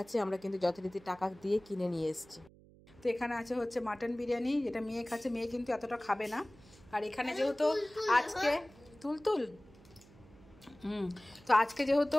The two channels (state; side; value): noise; right; hum, 24 dB below the sound